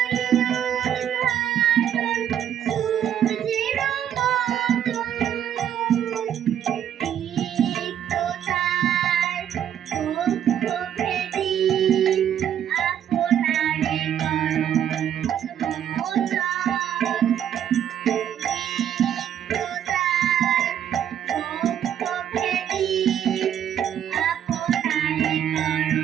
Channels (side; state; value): left; quieter; 9.9 dB